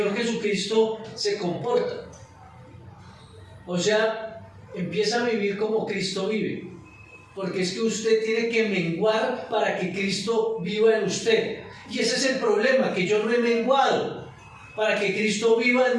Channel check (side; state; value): both; identical; correlation 1.00